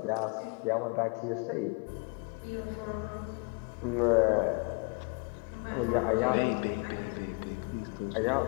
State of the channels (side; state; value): right; quieter; 33.8 dB